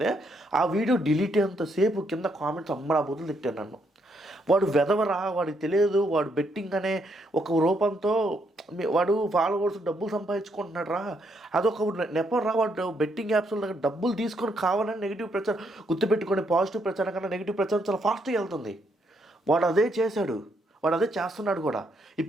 ఆ వీడియో డిలీట్ అయ్యేంతసేపు కింద కామెంట్స్ అమ్మడా బుద్ధులు తిట్టాను నన్ను. వాడు వెదవరా, వాడికి తెలియదు, వాడు బెట్టింగ్ అనే ఒక రూపంతో వాడు ఫాలోవర్స్ డబ్బులు సంపాదించుకుంటున్నాడు రా, అదొక నెపరా. వాడు బెట్టింగ్ యాప్స్లో దగ్గర డబ్బులు తీసుకొని కావాలని నెగిటివ్ ప్రచారం గుర్తుపెట్టుకొని, పాజిటివ్ ప్రచారం కన్నా నెగిటివ్ ప్రచారం చాలా ఫాస్ట్గా వెళ్తుంది. వాడు అదే చేశాడు, వాడు అదే చేస్తున్నాడు కూడా.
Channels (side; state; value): both; normal; correlation 0.75